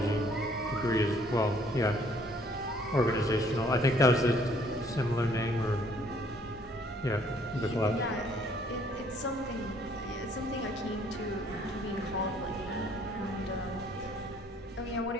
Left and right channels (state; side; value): normal; both; correlation 0.62